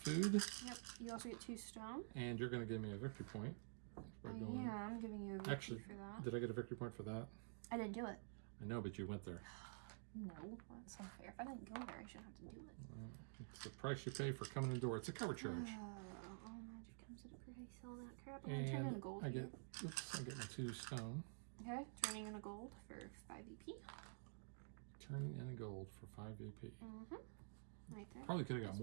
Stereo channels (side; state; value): left; silent; digital silence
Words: Yep. You also get 2 stone. And you're gonna give me a victory point. Yeah, I'm giving you a victory for that. Did I get a victory point for that? I didn't do it. I know, but you went there. No, that's unfair. If I didn't go there, I shouldn't have to do it. It's the price you pay for coming in the door. It's a cover charge. All magic comes at a price. All that crap. I'm gonna turn in a gold. I get my 2 stone. Okay, turning in a gold for 5 VP. Turning in a gold for 5 VP. Right there. Probably could have got